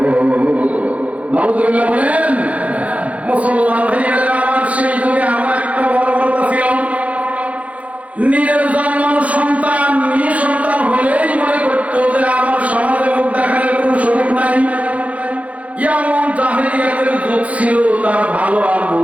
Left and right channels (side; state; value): left; late; 0.066 ms